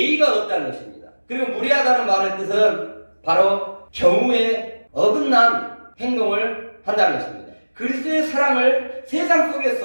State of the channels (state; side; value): inverted; both; correlation -1.00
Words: 없다는 것입니다. 그리고 무례하다는 말의 뜻은 바로 경우에 어긋난 행동을 한다는 것입니다. 그리스도의 사랑을 세상